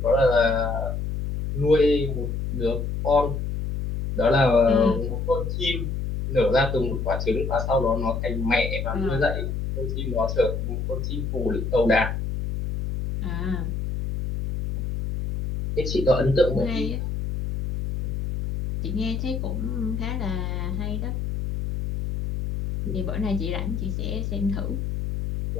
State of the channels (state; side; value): noise; left; hum, 3 dB below the sound